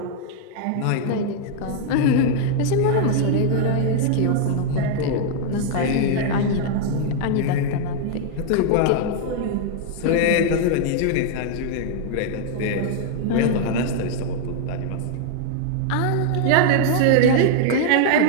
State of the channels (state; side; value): different; both; correlation 0.00